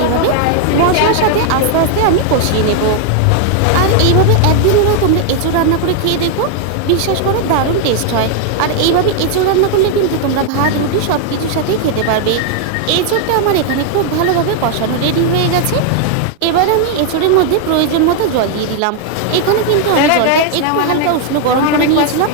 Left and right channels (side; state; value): both; different; correlation 0.00